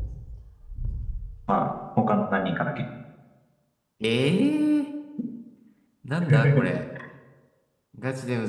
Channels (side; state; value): both; identical; correlation 1.00